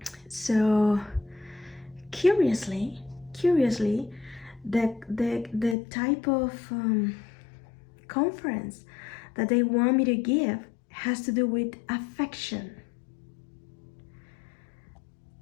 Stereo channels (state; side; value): drops out; right; at 5.8 s